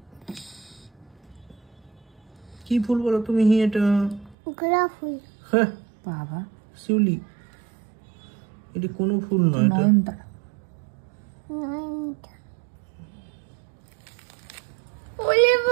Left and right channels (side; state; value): left; drops out; at 4.4 s